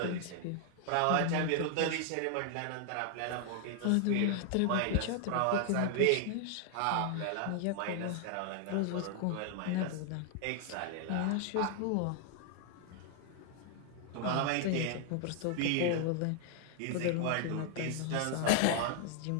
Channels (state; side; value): different; both; correlation 0.00